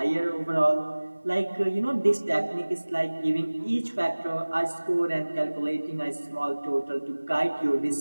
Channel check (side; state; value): both; inverted; correlation -1.00